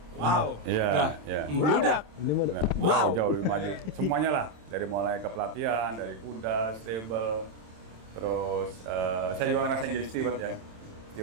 wow, Iya, udah iya. meludak. Ini mah Nah, Wow. jauh lebih maju. Semuanya lah, dari mulai ke pelatihan, dari kuda, stable, terus saya juga ngerasain jadi steward ya.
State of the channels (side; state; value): left; late; 27 ms